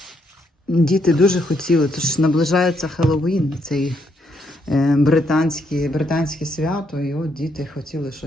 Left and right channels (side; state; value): both; normal; correlation 0.75